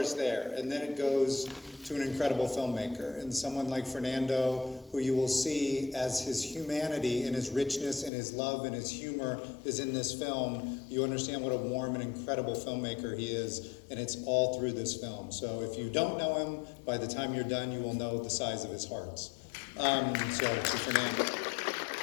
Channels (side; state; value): right; drops out; at 8.1 s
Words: there, and then it goes to an incredible filmmaker, and someone like Fernando, who you will see as his humanity and his richness and his love and his humor is in this film. You understand what a warm and incredible filmmaker he is, and it's all through this film. So if you don't know him, by the time you're done, you will know the size of his hearts. So to Fernando.